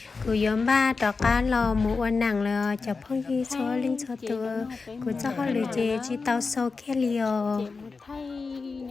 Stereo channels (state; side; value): quieter; right; 4.4 dB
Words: của nhóm ba trò cá lò mũ ăn nặng là chập phong như số linh số tôi của cho họ lười chê chỉ tao sâu kia liều thay